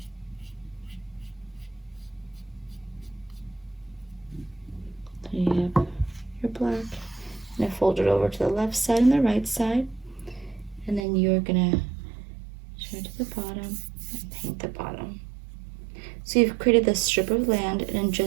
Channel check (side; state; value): left; drops out; at 11.0 s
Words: So you have your black. And fold it over to the left side and the right side. And then you're gonna turn to the bottom and paint the bottom. So you've created this strip of land, and in